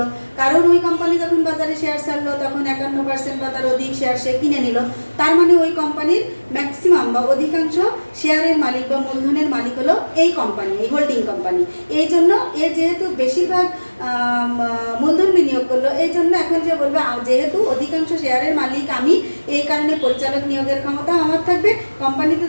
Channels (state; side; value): inverted; both; correlation -1.00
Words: কারণ ওই কোম্পানি যখন বাজারে শেয়ার ছাড়লো তখন 51% বা তার অধিক শেয়ার সে কিনে নিল। তার মানে ওই কোম্পানির ম্যাক্সিমাম বা অধিকাংশ শেয়ারের মালিক বা মূলধনের মালিক হলো এই কোম্পানি, এই হোল্ডিং কোম্পানি। এই জন্য যেহেতু বেশিরভাগ মূলধন বিনিয়োগ করলো, এই জন্য এখন যে বলবে যেহেতু অধিকাংশ শেয়ারের মালিক আমি, এই কারণে পরিচালক নিয়োগের ক্ষমতা আমার থাকবে, কোম্পানিতে